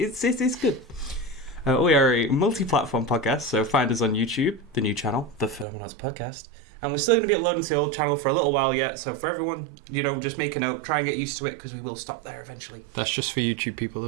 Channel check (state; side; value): drops out; left; at 5.7 s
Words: good. We are a multi-platform podcast, so find us on YouTube, the new channel, the Phenomenauts Podcast. And we're still going to be uploading to the old channel for a little while yet, so for everyone, just make a note, try and get used to it, because we will stop there eventually. That's just for YouTube people,